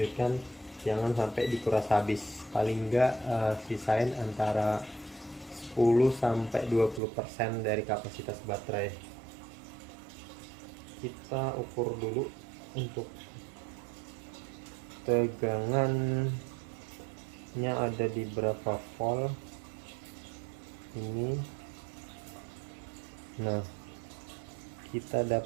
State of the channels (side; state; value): left; drops out; at 7.0 s